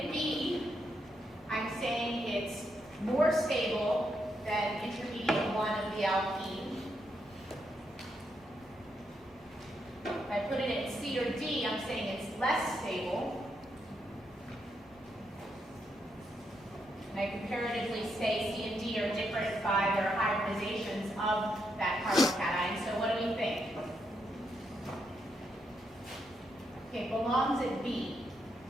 at B, I'm saying it's more stable than intermediate 1 of the alkene. If I put it at C or D, I'm saying it's less stable. And I comparatively say C and D are different by their hybridizations of that carbocation. So what do we think? Okay, it belongs at B.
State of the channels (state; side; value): normal; both; correlation 0.80